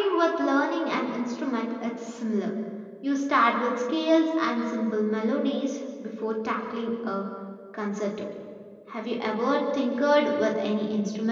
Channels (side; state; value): both; identical; correlation 1.00